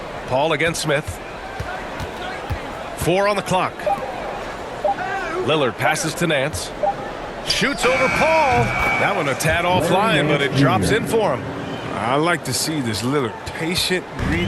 Paul against Smith. 4 on the clock. Lillard passes to Nance. Shoots over Paul. That one a tad offline, but it drops in for him. I like to see this Lillard patient,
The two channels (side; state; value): both; identical; correlation 1.00